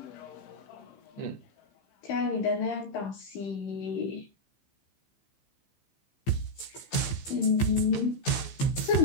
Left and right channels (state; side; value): late; right; 15 ms